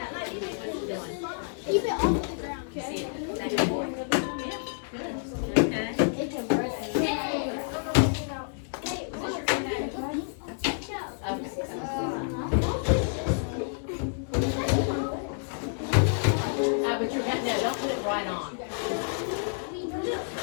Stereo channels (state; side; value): silent; right; 59 dB below the other